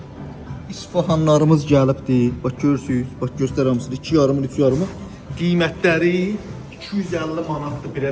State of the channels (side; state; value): both; identical; correlation 1.00